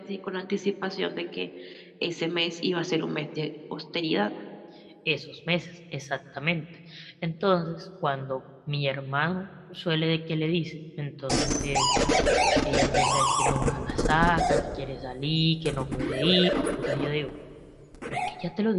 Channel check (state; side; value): identical; both; correlation 1.00